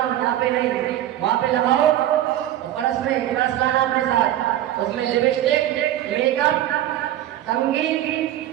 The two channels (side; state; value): left; quieter; 12.9 dB